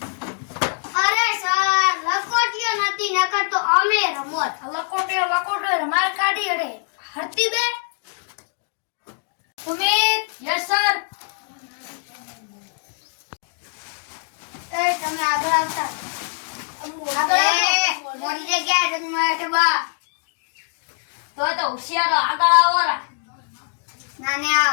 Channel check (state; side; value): silent; right; 57 dB below the other